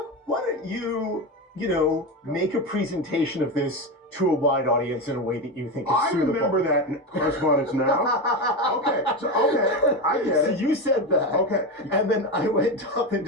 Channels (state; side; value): normal; both; correlation 0.17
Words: why don't make a presentation of this to a wide audience in a way that you think is suitable. I remember that correspondence now. Okay, I get So it. you said that. Okay. And then I went up and